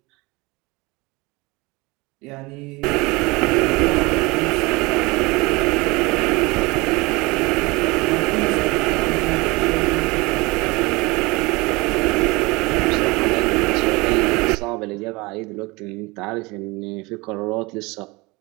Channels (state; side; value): quieter; left; 24.1 dB